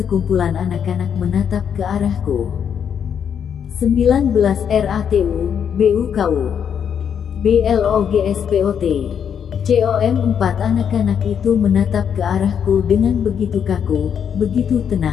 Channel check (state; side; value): quieter; right; 8.0 dB